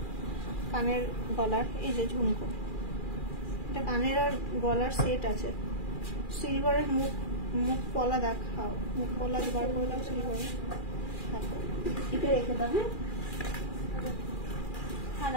কানের গলার। এই যে ঝুমকো, এটা কানের আর গলার সেট আছে। সিলভারের মুখ পলা দেখাও, মুখ পলা বার করে দাও সিলভারের। এটা রেখে দেবে। হ্যাঁ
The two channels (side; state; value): right; late; 2.4 ms